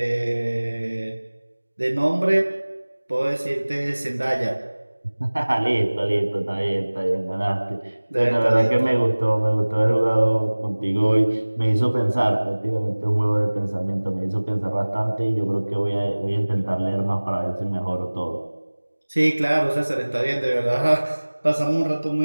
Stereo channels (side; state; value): both; inverted; correlation -1.00